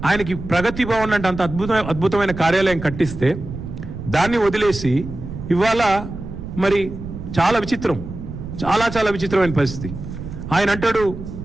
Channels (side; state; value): right; noise; rumble, 10 dB below the sound